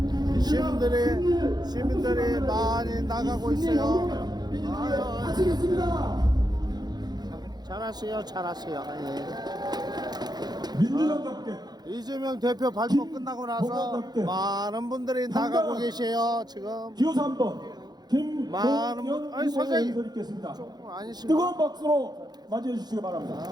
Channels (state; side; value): late; left; 0.20 ms